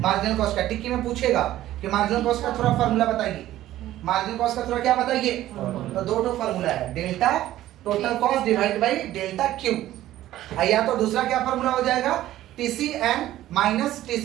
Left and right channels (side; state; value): left; quieter; 14.1 dB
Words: कॉस्ट का। टिक्की में पूछेगा कि मार्जिनल कॉस्ट का थोड़ा फार्मूला बताइए, मार्जिनल कॉस्ट का थोड़ा क्या बताइए? तो दो फार्मूला है, delta total cost divide by delta Q. या तो दूसरा क्या फार्मूला हो जाएगा? TCN minus